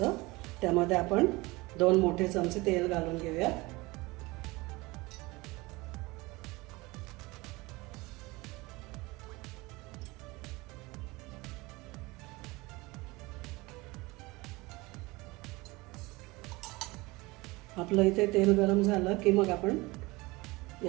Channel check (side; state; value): left; quieter; 22.6 dB